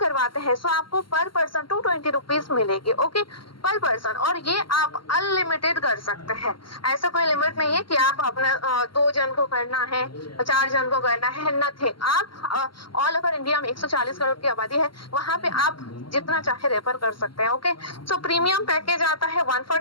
हैं तो आपको पर पर्सन 220 रुपीज मिलेगी। ओके, पर पर्सन, और ये आप अनलिमिटेड कर सकते हैं, ऐसा कोई लिमिट नहीं है कि आप अपना 2 जन को करना है, 4 जन को करना है, नथिंग। आप ऑल ओवर इंडिया में 140 करोड़ की आबादी है, वहां पे आप जितना चाहे रेफर कर सकते हैं। ओके, सो प्रीमियम पैकेज आता है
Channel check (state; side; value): late; right; 0.73 ms